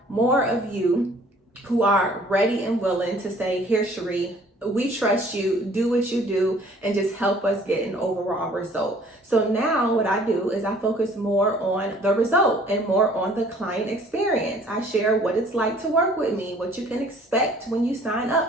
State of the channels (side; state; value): both; normal; correlation 0.55